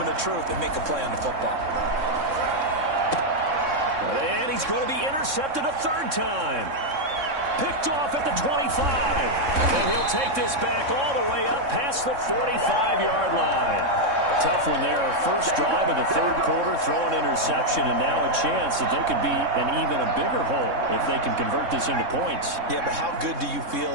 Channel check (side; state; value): left; late; 3.6 ms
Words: of truth and make a play on the football. And he's going to be intercepted a 3rd time. Picked off at the 25. And he'll take this back all the way up past the 45-yard line. Tough one there. First drive of the 3rd quarter, throw an interception, and now a chance that they could be in even a bigger hole if they can convert this into points. Yeah, but how good do you feel